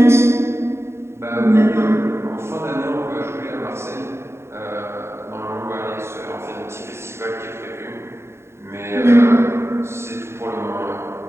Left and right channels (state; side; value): late; left; 0.13 ms